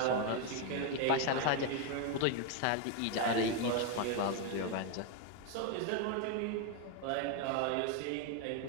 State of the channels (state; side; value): different; both; correlation 0.01